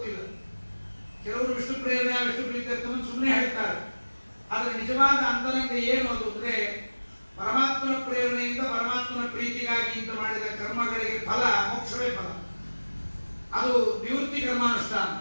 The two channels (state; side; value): inverted; both; correlation -1.00